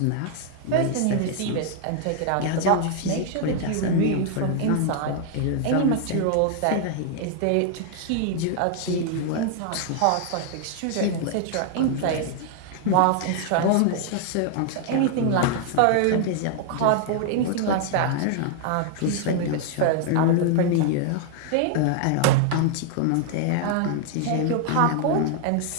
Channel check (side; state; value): both; different; correlation 0.00